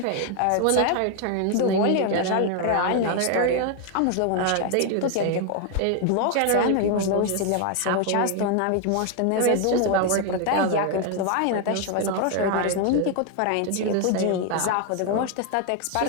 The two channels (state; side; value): different; both; correlation 0.01